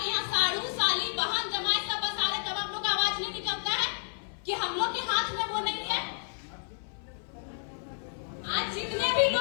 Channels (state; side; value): silent; right; 57 dB below the other